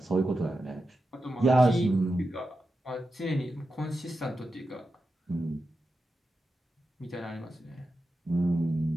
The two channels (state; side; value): normal; both; correlation 0.90